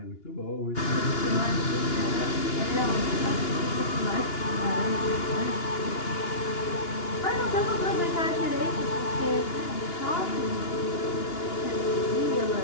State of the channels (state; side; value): late; right; 2.9 ms